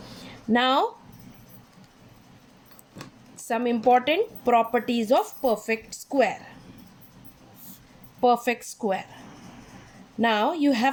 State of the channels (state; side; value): identical; both; correlation 1.00